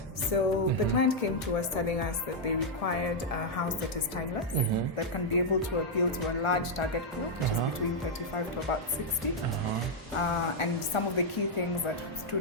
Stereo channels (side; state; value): both; normal; correlation -0.03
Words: So the client came to us telling us that they required a house that is timeless, that can be able to appeal to a large target group, which is between 35 to about 60. And some of the key things that